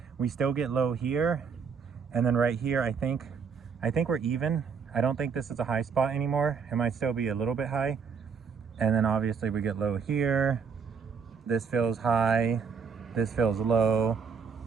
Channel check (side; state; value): left; quieter; 6.0 dB